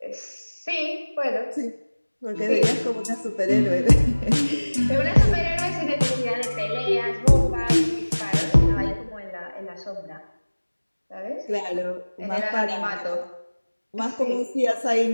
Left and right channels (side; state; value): both; inverted; correlation -1.00